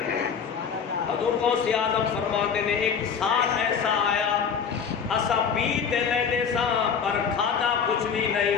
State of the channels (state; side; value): quieter; right; 6.7 dB